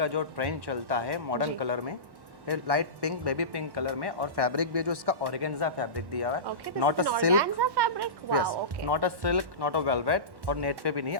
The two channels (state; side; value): late; left; 1.1 ms